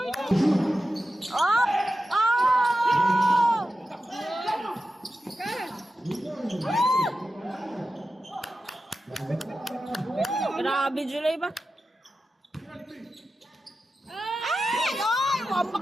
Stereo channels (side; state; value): both; normal; correlation 0.92